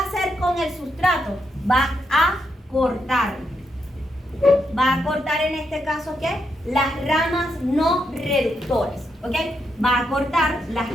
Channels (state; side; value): normal; both; correlation 0.81